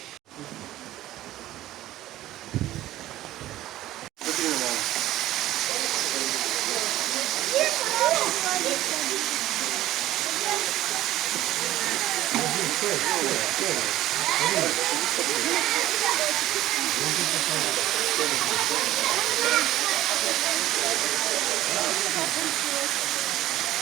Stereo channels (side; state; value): left; quieter; 14.7 dB